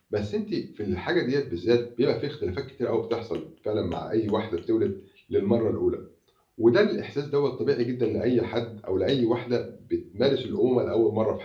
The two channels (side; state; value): both; identical; correlation 1.00